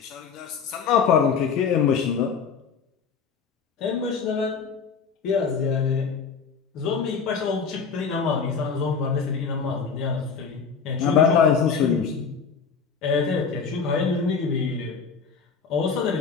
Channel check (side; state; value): right; quieter; 5.8 dB